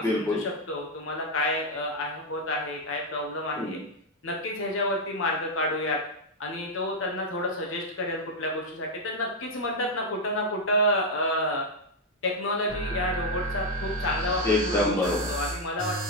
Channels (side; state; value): both; normal; correlation 0.02